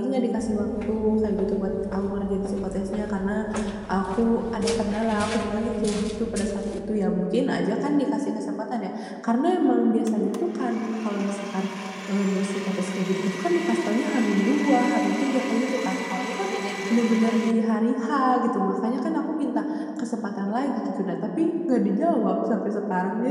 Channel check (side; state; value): both; identical; correlation 1.00